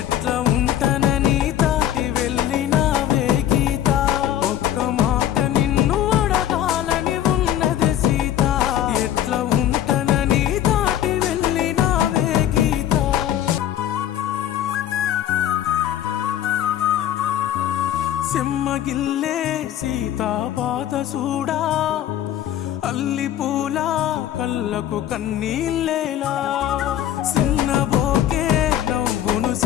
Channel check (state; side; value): quieter; right; 11.4 dB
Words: ఉంటానని దాటి వెళ్ళినావే గీత. ఒక్క మాట నిన్ను అడగాలని ఉన్నది సీత, ఎట్లా ఉంటానని దాటి వెళ్ళినావే గీత. సెమ్మగిల్లే సీతా పాత సూడా, అల్లి పూల కళ్ళకు కన్నీళ్ళేలా. సిన్నబోకే నవ్వును